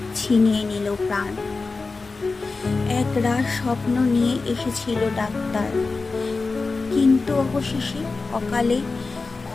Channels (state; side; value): quieter; right; 3.9 dB